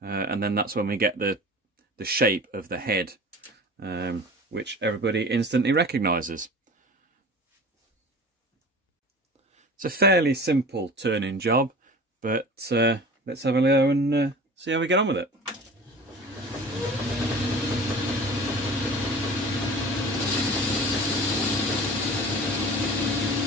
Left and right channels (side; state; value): both; normal; correlation 0.39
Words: and then that's when we get the shape of the head, which everybody instantly recognises. It's a fairly simple turning job, but let's have a go and see how we get on with it.